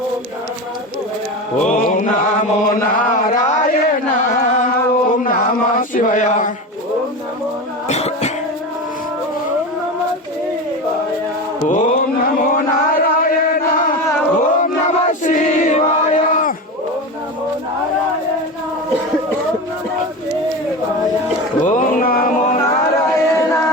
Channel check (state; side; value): normal; both; correlation 0.24